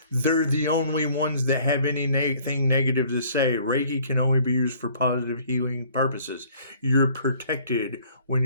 they're the only ones that have anything negative to say. Reiki can only be used for positive healing purposes. You're protected when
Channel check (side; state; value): both; inverted; correlation -0.56